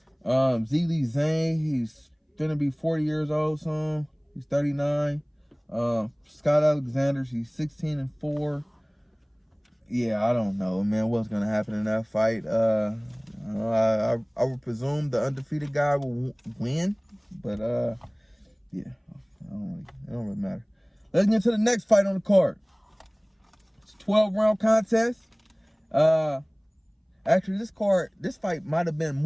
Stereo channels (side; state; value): both; identical; correlation 1.00